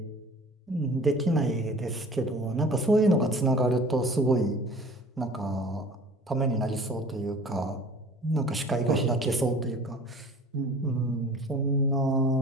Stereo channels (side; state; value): both; normal; correlation 0.45